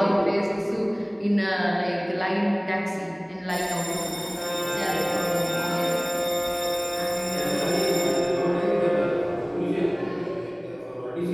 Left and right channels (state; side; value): identical; both; correlation 1.00